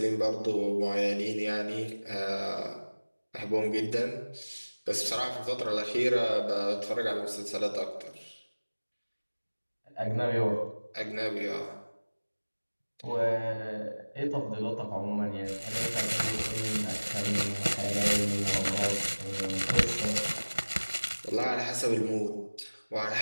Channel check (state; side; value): inverted; both; correlation -1.00